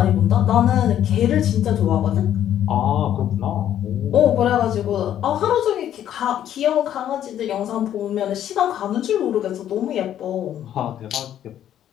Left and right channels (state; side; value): quieter; right; 10.8 dB